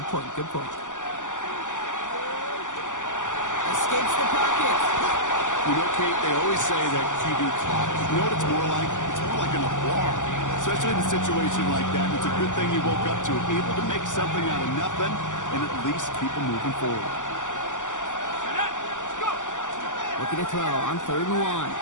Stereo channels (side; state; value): right; late; 0.87 ms